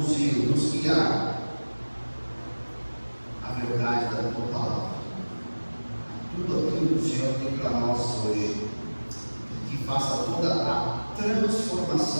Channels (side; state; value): both; inverted; correlation -1.00